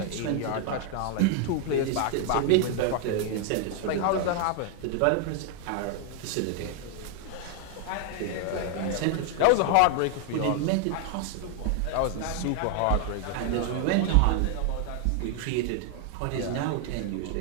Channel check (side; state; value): both; different; correlation 0.00